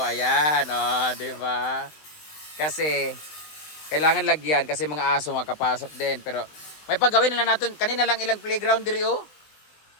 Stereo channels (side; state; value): right; late; 20 ms